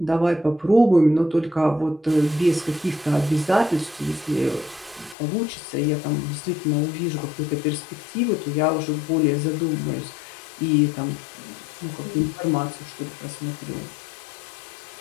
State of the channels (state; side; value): drops out; right; at 5.2 s